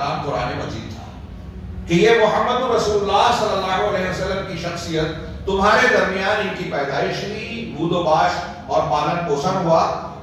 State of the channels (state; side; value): identical; both; correlation 1.00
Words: قرآن مجید تھا کہ یہ محمد رسول اللہ صلی اللہ علیہ وسلم کی شخصیت تمہارے درمیان ان کی پیدائش ہوئی، بود و باش اور پالن پوشن ہوا،